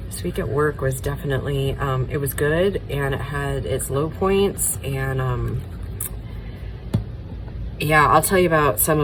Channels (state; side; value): identical; both; correlation 1.00